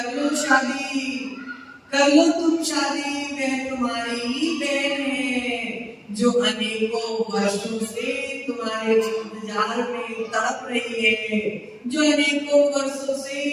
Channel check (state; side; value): identical; both; correlation 1.00